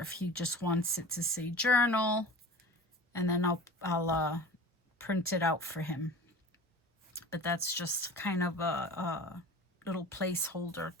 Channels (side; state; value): both; normal; correlation 0.36